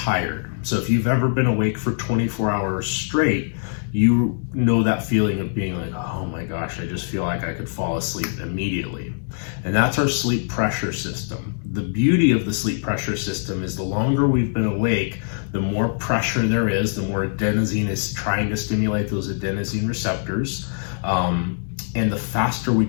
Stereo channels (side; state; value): right; silent; digital silence